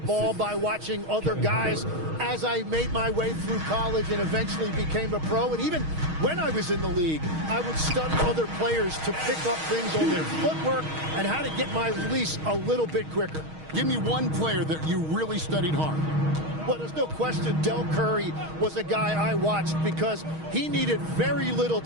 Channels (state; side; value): late; left; 6.4 ms